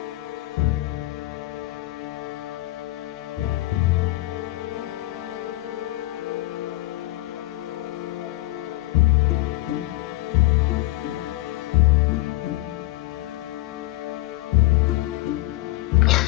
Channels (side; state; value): right; quieter; 18.5 dB